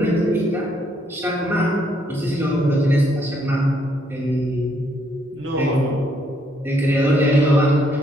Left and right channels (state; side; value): normal; both; correlation 0.71